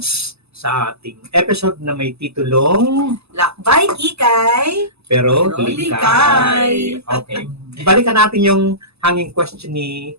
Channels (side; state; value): left; late; 0.79 ms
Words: sa ating episode na may titulong Lakbay Kikay, Pero Pero Likay. Okay. Balikan natin yung hanging question ni